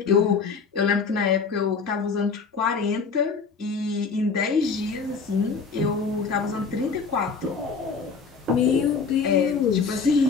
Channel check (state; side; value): quieter; right; 5.1 dB